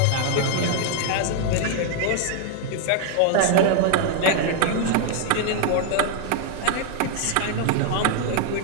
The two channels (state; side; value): different; both; correlation 0.00